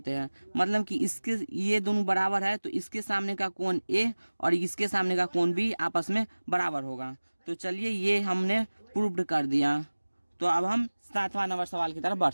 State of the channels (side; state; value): both; inverted; correlation -1.00